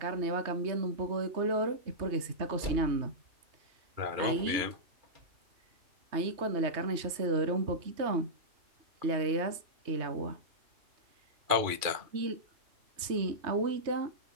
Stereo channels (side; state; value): left; late; 3.2 ms